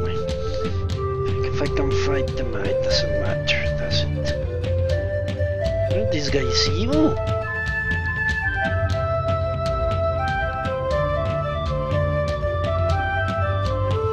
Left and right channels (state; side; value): identical; both; correlation 1.00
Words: If I can fight them, it doesn't matter, does it? Aren't these guys evil?